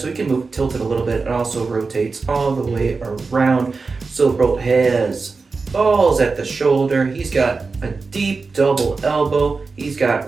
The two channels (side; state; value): left; quieter; 4.3 dB